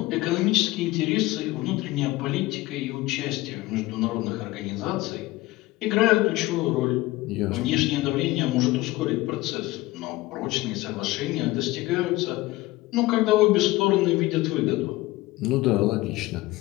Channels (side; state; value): right; quieter; 19.1 dB